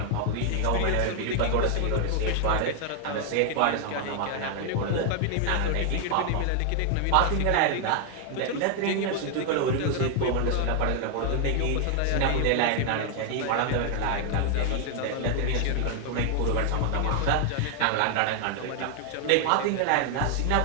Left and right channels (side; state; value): both; different; correlation 0.00